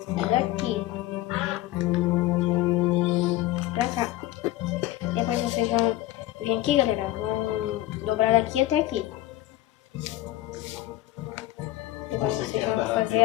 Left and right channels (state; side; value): quieter; right; 15.6 dB